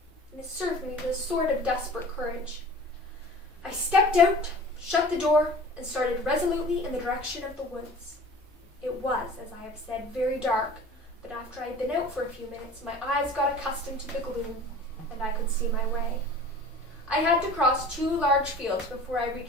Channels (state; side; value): normal; both; correlation 0.42